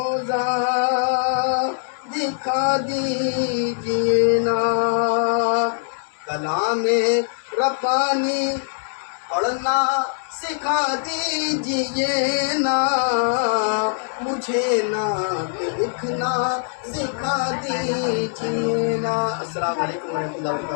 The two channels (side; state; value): right; silent; digital silence